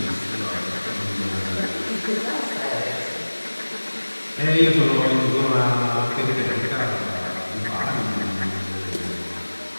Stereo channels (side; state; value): both; inverted; correlation -1.00